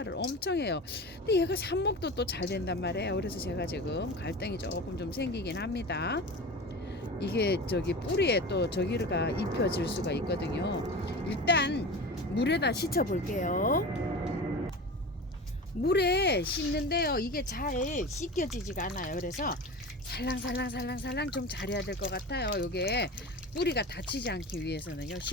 엄청 해요. 근데 얘가 삽목도 또 잘 된단 말이에요. 그래서 제가 지금 갈등이 조금 좀 생기긴 합니다. 이게 저기 뿌리에 또 저기가 입혀질 수가 있거든요. 일단 물에다 씻어 볼게요. 물에 씻는데요, 이게 잘 씻겨지지가 않아요. 그래서 살랑살랑 좀 잘해야 될 것 같아요. 요게 뿌리가 다치지 않기 위해서는요,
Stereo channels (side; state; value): both; normal; correlation 0.31